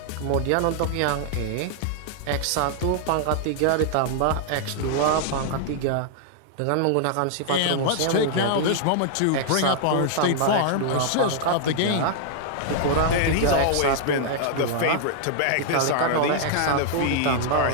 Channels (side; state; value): both; different; correlation -0.01